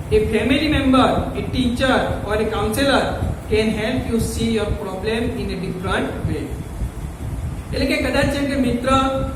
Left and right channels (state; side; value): identical; both; correlation 1.00